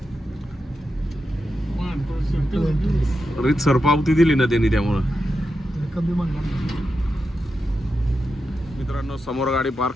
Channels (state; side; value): normal; both; correlation 0.88